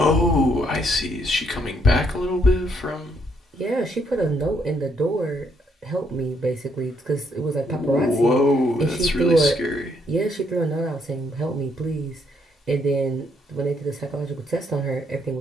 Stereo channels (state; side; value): normal; both; correlation 0.72